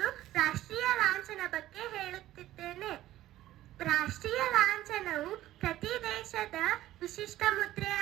ರಾಷ್ಟ್ರೀಯ ಲಾಂಛನ ಬಗ್ಗೆ ಹೇಳುತ್ತಿದ್ದೇನೆ. ರಾಷ್ಟ್ರೀಯ ಲಾಂಛನವು ಪ್ರತಿ ದೇಶದ ವಿಶಿಷ್ಟ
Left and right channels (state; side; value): quieter; left; 14.5 dB